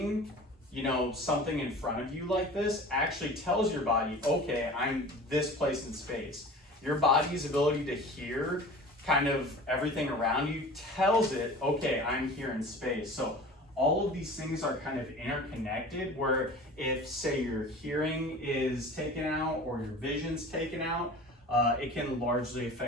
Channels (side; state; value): both; normal; correlation 0.39